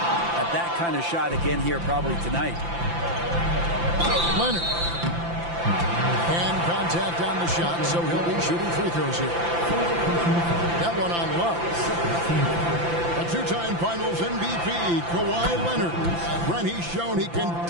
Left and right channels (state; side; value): late; left; 5.9 ms